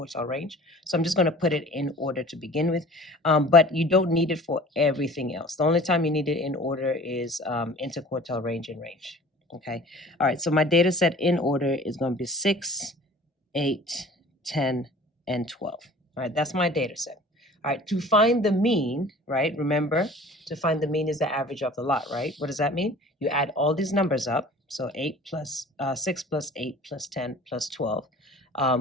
range. So I'm just going to put it in order to begin with. But you don't need it for everything else. The only time you need it in order is interquartile range and range. Okay. All right. So my data set in order is going to be 6, 8, 10, and 12. All right. That's my data set. All right, to find the mean, right? Remember, to find the mean is the average of the lot, right? What does that mean? You add all these numbers up. So 6 plus 8 plus 10 plus 12,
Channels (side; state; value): both; normal; correlation 0.45